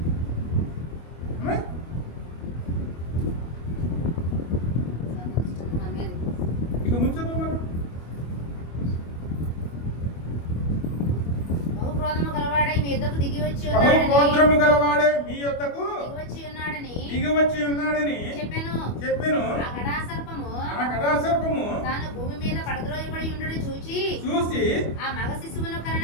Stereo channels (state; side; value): late; right; 25 ms